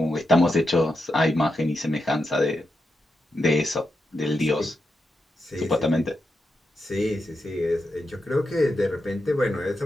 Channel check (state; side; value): normal; both; correlation 0.86